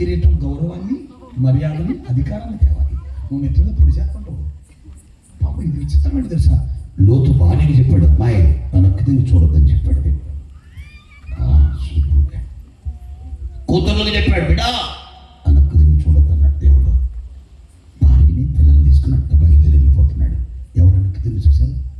గౌరవాన్ని, మర్యాదని, అధికారాన్ని తేవాలి. నువ్వు నెట్టిన పొడి చేస్తుంటావు. పాప ఇది విచిత్రమైన తెలుసా, లోతు భార్యకి చెప్పాడు, అమ్మాయి వెనక్కి తిరిగి చూడొద్దని చెప్పాడు. కూతుర్లకి చెప్పాడు, బిడ్డ వెనక్కి తిరిగి చూడొద్దన్నాడు దేవుడు. భార్యని పిల్లలు తీసుకున్నట్టు బయలుదేరి వెళ్ళిపోతున్నాడు. ఎవరు వెనక్కి తిరిగి చూశారు?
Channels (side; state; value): both; identical; correlation 1.00